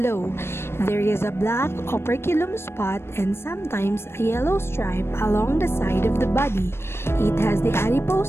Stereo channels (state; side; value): late; right; 0.12 ms